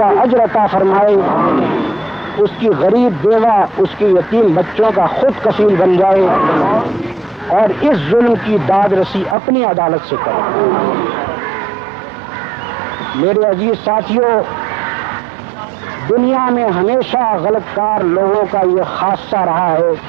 اجر عطا فرمائے، اس کی غریب بیوہ، اس کے یتیم بچوں کا خود کفیل بن جائے، اور اس ظلم کی داد رسی اپنی عدالت سے کرے۔ میرے عزیز ساتھیوں، دنیا میں ہمیشہ غلط کار لوگوں کا یہ خاصہ رہا ہے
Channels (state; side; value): drops out; left; at 9.3 s